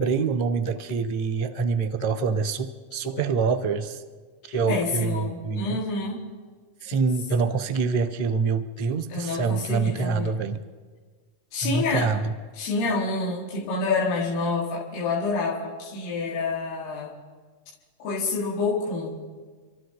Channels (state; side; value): late; right; 12 ms